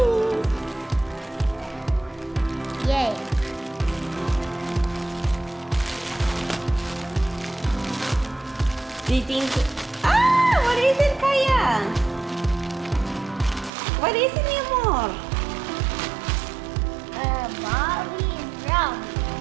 Yay. Do you think... Ah! What is it, Kaya? What is it, mi amor? Bobby and Brown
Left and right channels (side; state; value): left; drops out; at 13.7 s